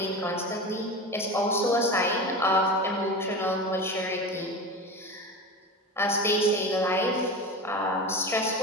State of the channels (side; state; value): both; normal; correlation 0.27